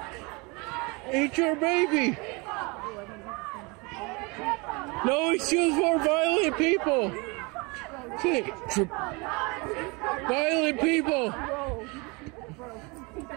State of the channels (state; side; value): quieter; left; 28.0 dB